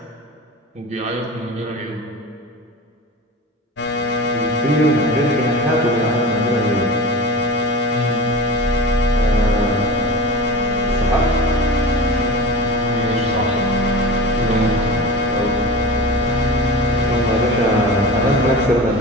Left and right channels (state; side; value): normal; both; correlation 0.31